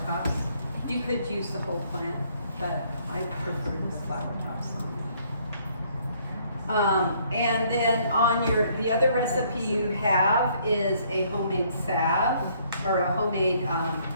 tops. You could use the whole plant, but I prefer the flower tops on it. And then on the other recipe you have is a homemade salve, or a homemade, not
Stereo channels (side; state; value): both; inverted; correlation -0.65